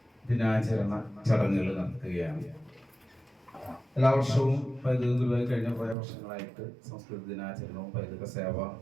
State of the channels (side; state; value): left; drops out; at 6.0 s